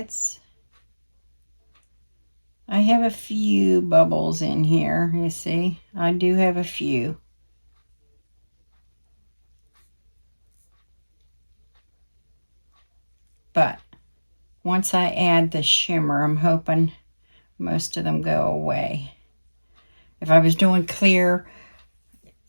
I have a few bubbles in here, you see. I do have a few. But once I add the shimmer, I'm hoping most of them go away. If I was doing clear,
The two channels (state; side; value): inverted; both; correlation -1.00